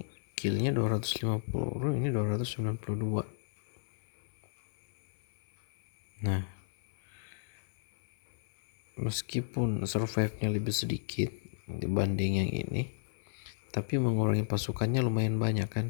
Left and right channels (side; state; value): right; silent; 55 dB below the other